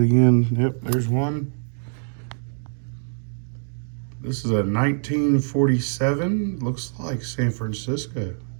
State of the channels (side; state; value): left; silent; digital silence